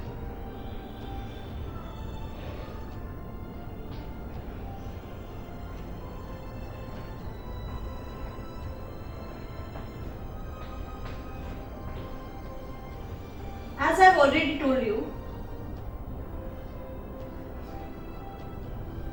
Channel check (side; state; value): both; identical; correlation 1.00